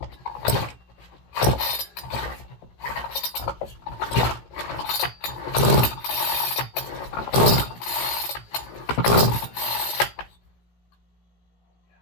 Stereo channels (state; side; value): late; right; 17 ms